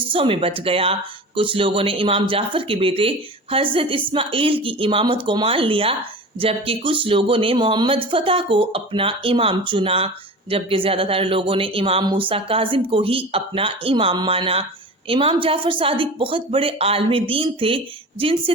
میں بٹ گیا۔ کچھ لوگوں نے امام جعفر کے بیٹے حضرت اسماعیل کی امامت کو مان لیا، جبکہ کچھ لوگوں نے محمد فتح کو اپنا امام چنا، جبکہ زیادہ تر لوگوں نے امام موسیٰ کاظم کو ہی اپنا امام مانا۔ امام جعفر صادق بہت بڑے عالم دین تھے، جن سے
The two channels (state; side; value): normal; both; correlation 0.34